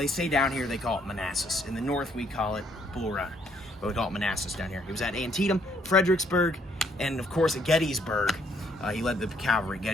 say down here, they call it Manassas. In the north, we call it Bull Run, but we call it Manassas down here. He was at Antietam, Fredericksburg, and of course at Gettysburg. He led the cavalry at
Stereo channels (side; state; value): both; normal; correlation 0.68